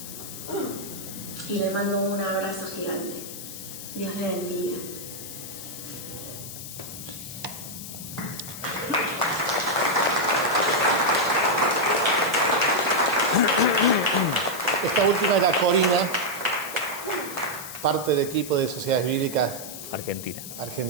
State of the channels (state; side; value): noise; left; hiss, 11 dB below the sound